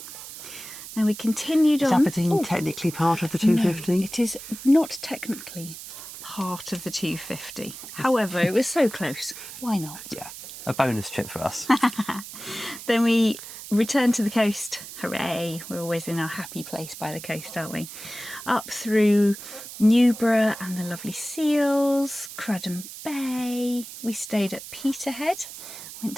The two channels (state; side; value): noise; right; hiss, 12 dB below the sound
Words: Then we continued on. Is Aberdeen technically part of the 250? No, it is not technically part of the 250. However, it was so close. Why not? Yeah, a bonus trip for us. Then we returned to the coast. Hooray! We're always in our happy place by the coast, aren't we? Up through Newborough and the lovely Seals, Crudden Bay. We stayed at Peterhead, went